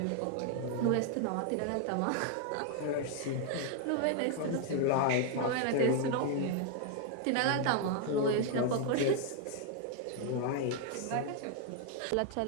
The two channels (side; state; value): both; different; correlation 0.00